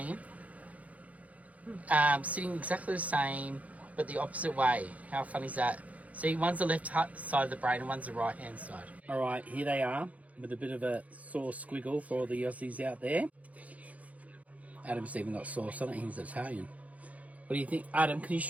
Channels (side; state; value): left; late; 0.069 ms